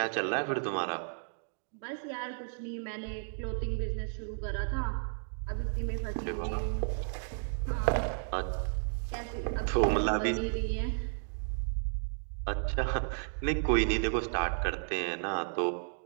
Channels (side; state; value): left; silent; digital silence